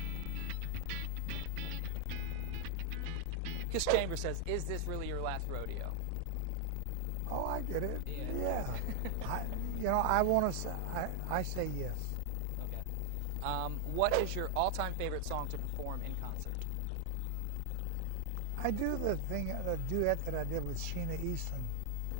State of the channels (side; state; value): both; different; correlation 0.00